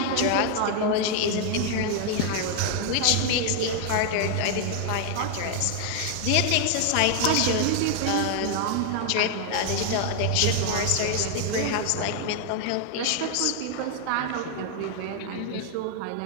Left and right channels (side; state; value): both; different; correlation 0.00